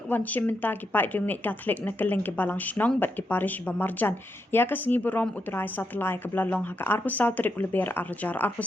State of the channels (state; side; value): normal; both; correlation 0.83